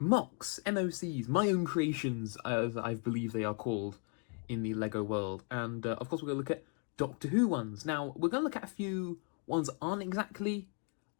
MOCs, my own creations, as I believe they are called in the Lego world. And of course we're going to look at Doctor Who ones. Now we're going to look at a few ones that aren't exactly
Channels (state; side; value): quieter; right; 37.1 dB